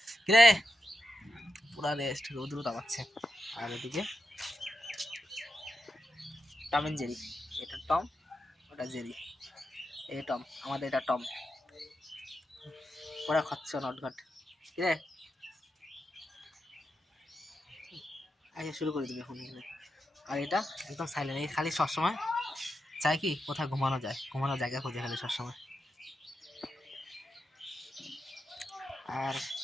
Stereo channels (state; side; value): normal; both; correlation 0.87